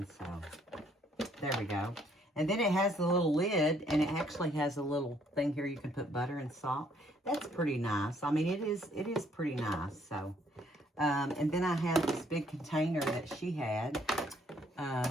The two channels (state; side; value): normal; both; correlation 0.66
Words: so there we go. And then it has the little lid, and it actually has a little thing here you can put butter and salt. That's pretty nice. I mean, it is pretty nice, so. And then I have this big container that she had